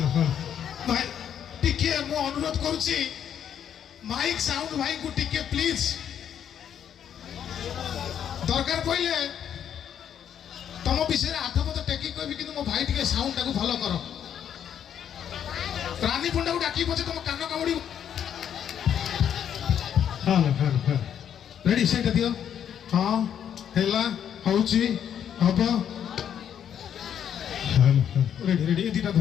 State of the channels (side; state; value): right; quieter; 9.1 dB